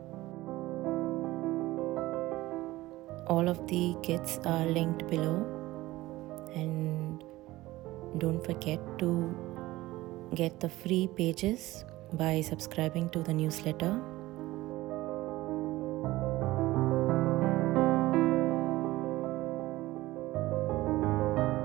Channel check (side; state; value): left; quieter; 18.0 dB